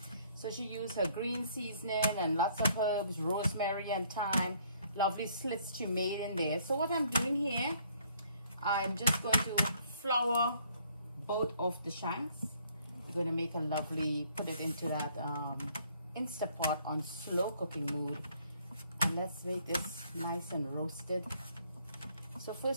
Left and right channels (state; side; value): inverted; both; correlation -0.63